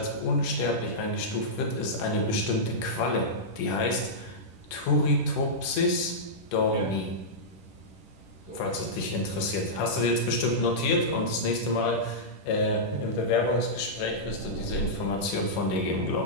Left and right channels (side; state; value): right; late; 10 ms